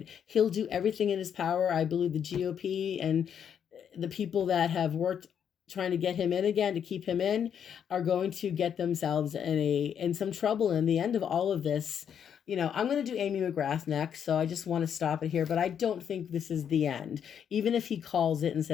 He'll do everything in his power. I believe the GOP and the people that have worked trying to get him in again, to keep him in, are going to get themselves in some trouble. In the end of all of this, I'm going to do Amy Mcgrath next, so I just want to stop it here. But I don't think this is the end, even if he calls it and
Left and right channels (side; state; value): right; quieter; 8.3 dB